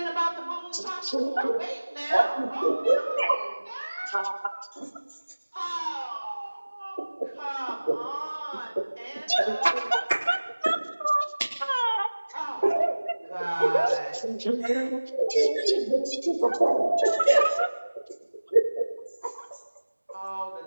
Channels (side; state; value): both; inverted; correlation -1.00